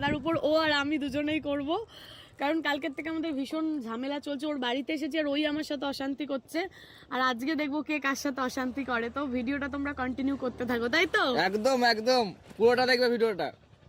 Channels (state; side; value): identical; both; correlation 1.00